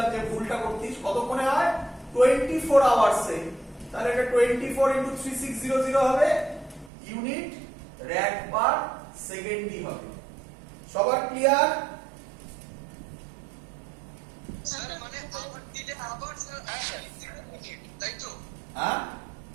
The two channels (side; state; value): left; drops out; at 6.9 s